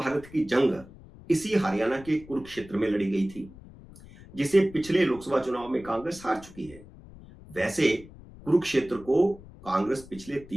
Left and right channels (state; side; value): noise; left; rumble, 19 dB below the sound